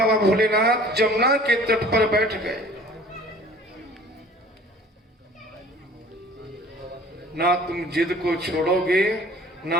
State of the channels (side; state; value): both; normal; correlation 0.49